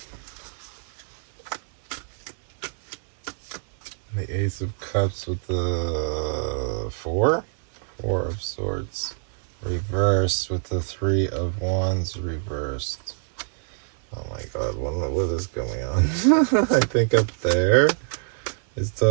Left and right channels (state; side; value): silent; left; 61 dB below the other